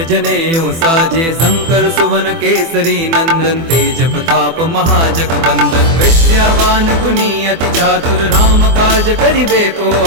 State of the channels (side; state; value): left; late; 24 ms